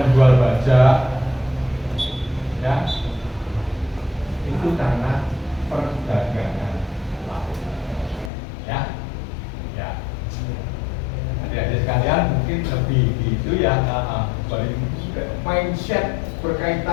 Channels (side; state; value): right; drops out; at 8.3 s